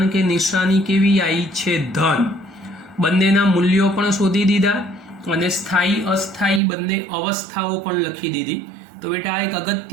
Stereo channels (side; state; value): left; drops out; at 6.6 s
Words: કે નિશાની કેવી આવી છે? ધન. બંનેના મૂલ્યો પણ શોધી દીધા અને સ્થાયી અસ્થાયી બંને અવસ્થાઓ પણ લખી દીધી. તો બેટા આ એક